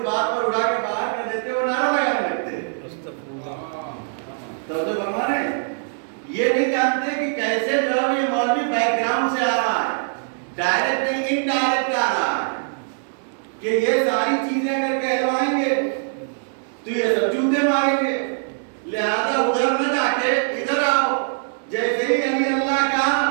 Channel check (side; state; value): left; silent; digital silence